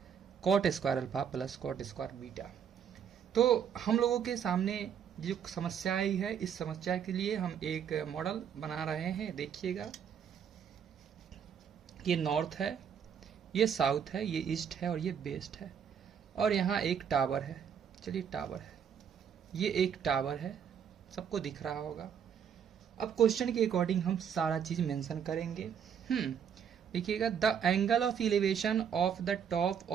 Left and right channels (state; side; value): quieter; left; 7.9 dB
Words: cot square alpha plus cot square beta. तो हम लोगों के सामने जो समस्या आई है, इस समस्या के लिए हम एक मॉडल बना रहे हैं। देखिएगा, ये नॉर्थ है, ये साउथ है, ये ईस्ट है और ये वेस्ट है, और यहाँ एक टावर है। चलिए टावर है, ये एक टावर है, सबको दिख रहा होगा। अब क्वेश्चन के अकॉर्डिंग हम सारा चीज मेंशन करेंगे। देखिएगा, the angle of elevation of the top